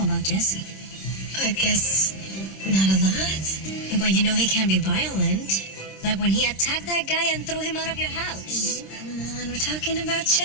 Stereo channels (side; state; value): right; late; 26 ms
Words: about Jesse? I guess not a lot. But you know he can be violent. Like when he attacked that guy and threw him out of your house. Come on, we're talking about